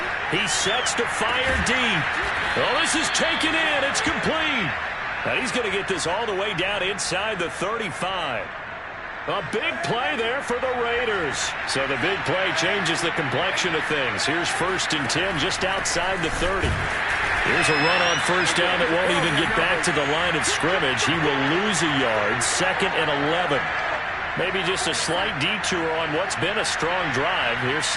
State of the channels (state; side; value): identical; both; correlation 1.00